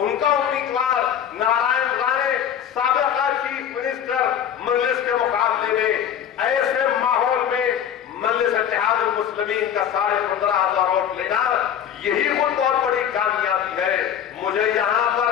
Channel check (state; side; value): quieter; right; 9.2 dB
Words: کا امیدوار نارائن رانے سابقہ چیف منسٹر مجلس کے مقابلے میں۔ ایسے ماحول میں مجلس اتحاد المسلمین کا 15,500 ووٹ لینا یہی خود بہت بڑی کامیابی ہے۔ مجھے یہاں